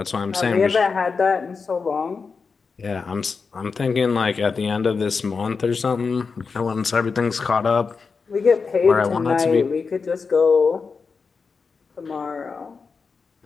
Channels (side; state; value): right; quieter; 5.0 dB